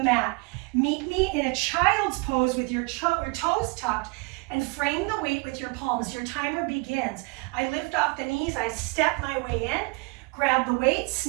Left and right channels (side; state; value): left; quieter; 29.5 dB